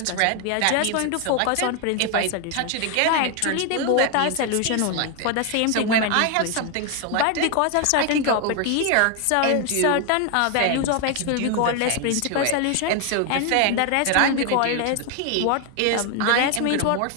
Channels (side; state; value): both; different; correlation 0.01